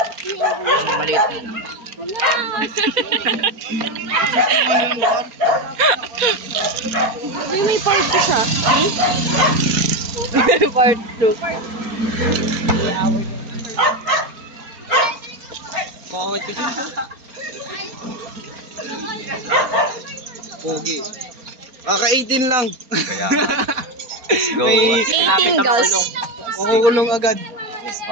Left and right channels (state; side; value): late; left; 4.3 ms